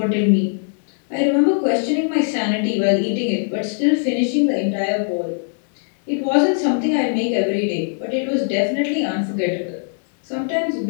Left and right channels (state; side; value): silent; right; 65 dB below the other